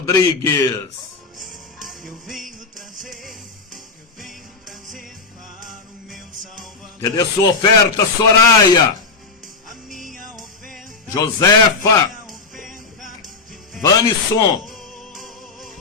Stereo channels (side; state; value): right; quieter; 4.4 dB